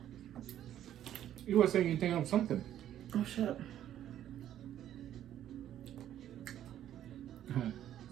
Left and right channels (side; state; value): left; quieter; 11.3 dB